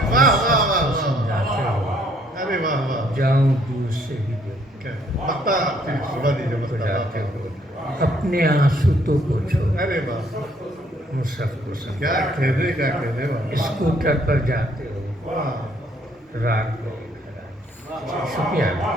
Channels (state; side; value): normal; both; correlation 0.65